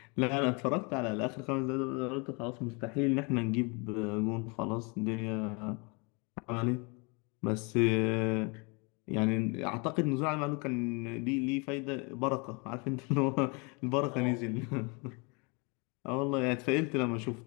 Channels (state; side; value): quieter; right; 31.1 dB